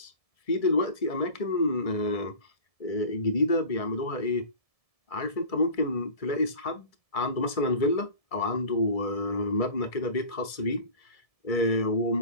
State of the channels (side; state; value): right; late; 1.7 ms